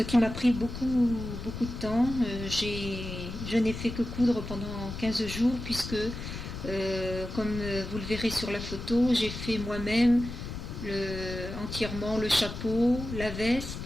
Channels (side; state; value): left; noise; rumble, 8 dB below the sound